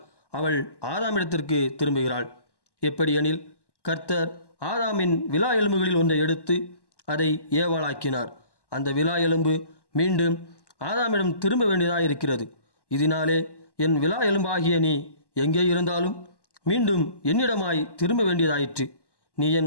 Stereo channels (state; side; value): late; right; 1.1 ms